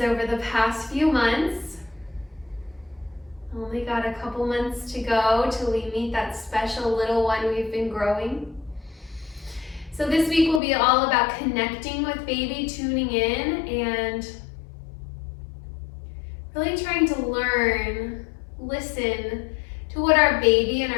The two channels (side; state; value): right; drops out; at 10.6 s